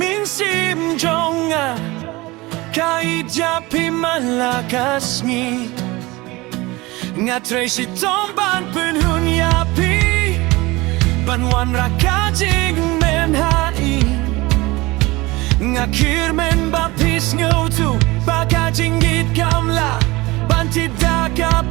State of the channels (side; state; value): left; quieter; 21.8 dB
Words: simjonga Kahit japi malakas ngi Nga Tracy tomban penhun yapi Banwan rakajing menhai Nga kirmen bapis ngotu Baka jinggit kamla Tidak